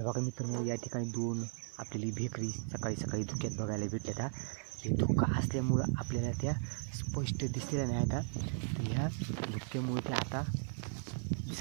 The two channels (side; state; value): left; silent; 53 dB below the other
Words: बघा मित्रांनो या ठिकाणी दोन आपल्याला भेकरी सकाळी सकाळी धुक्यात बघायला भेटल्यात. हे धुका असल्यामुळं आपल्याला त्या स्पष्ट दिसलेल्या नाही आता. तर ह्या धुक्यामुळे त्या आता